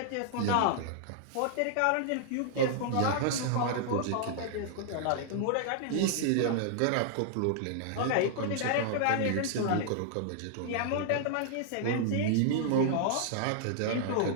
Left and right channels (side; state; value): both; different; correlation -0.01